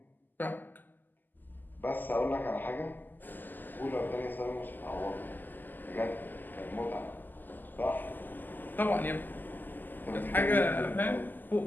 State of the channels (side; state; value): right; late; 0.088 ms